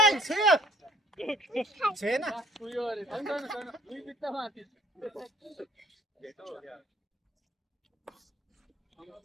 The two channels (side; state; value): both; normal; correlation 0.57